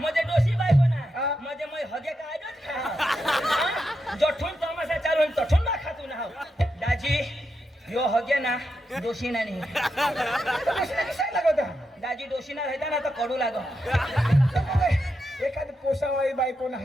डोशी बायको हा. ना म्हणजे मग हगे काय खा जठून तमाशा चालू तठून ना खातू ना दाजी यो हगे ना दोषी ना नाही लागत दाजी दोषी ना राहता ना तर कडू लाग एखादी पोसावाळी बाई कोण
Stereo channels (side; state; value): both; normal; correlation 0.85